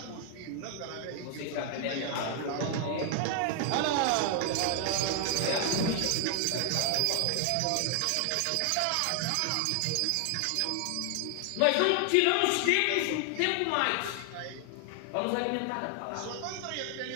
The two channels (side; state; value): both; different; correlation 0.00